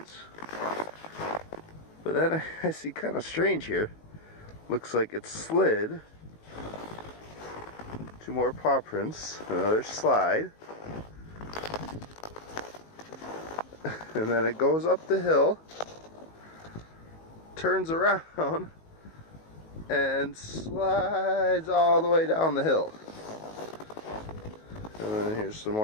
But then I see kind of strange here. Looks like it slid. 2 more paw prints, another slide. And then it goes up the hill, turns around, and slides all the way down the hill. And then here's some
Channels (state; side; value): late; right; 19 ms